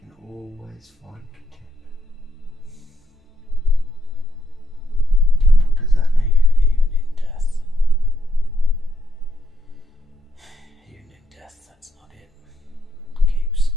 always find contentment. And what does that mean? Even in death. Even in death, that's not it. Keeps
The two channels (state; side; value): normal; both; correlation 0.76